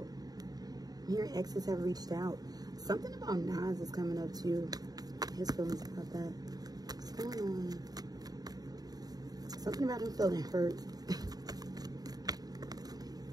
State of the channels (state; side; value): late; left; 0.19 ms